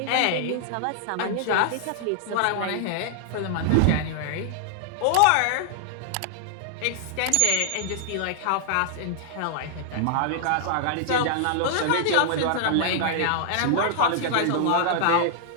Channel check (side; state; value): both; different; correlation -0.01